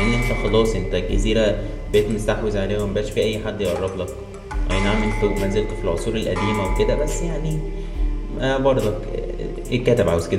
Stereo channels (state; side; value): identical; both; correlation 1.00